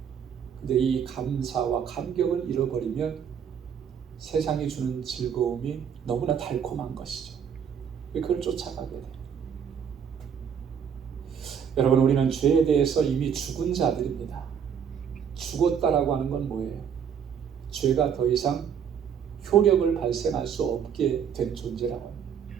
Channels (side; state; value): left; quieter; 7.8 dB